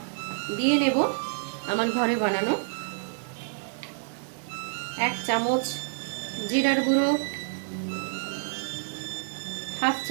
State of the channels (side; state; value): left; silent; digital silence